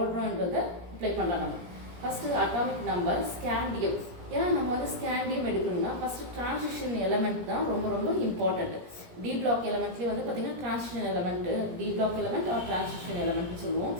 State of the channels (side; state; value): left; late; 17 ms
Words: அப்ளை பண்ணலாம். நம்ம ஃபஸ்ட்டு அட்டாமிக் நம்பர் ஸ்கேண்டியம். ஏன்னா நம்ம வந்து ஸ்கேண்டியம் எடுக்கணும்னா ஃபர்ஸ்ட் டிரான்சிஷன் எலமெண்ட் தான் ரொம்ப ரொம்ப இம்பார்ட்டன்ட். டி பிளாக் எலமெண்ட்லேயே வந்து பார்த்தீங்கன்னா transition element, D block element are transition எலமெண்ட்னு சொல்லுவோம்.